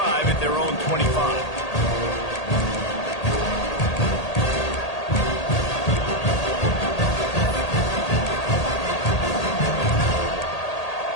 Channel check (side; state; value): right; late; 1.8 ms